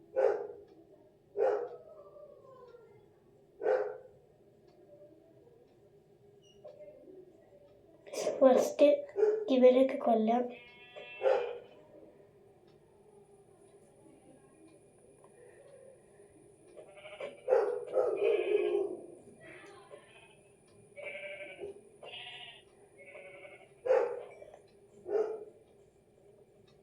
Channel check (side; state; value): both; identical; correlation 1.00